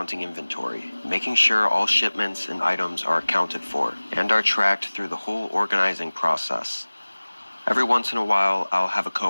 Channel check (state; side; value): inverted; both; correlation -1.00